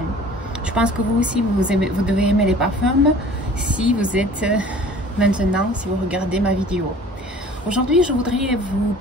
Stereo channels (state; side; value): normal; both; correlation 0.47